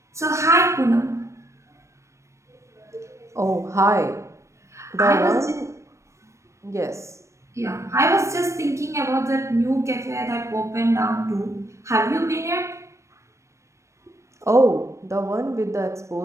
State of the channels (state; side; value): late; left; 0.14 ms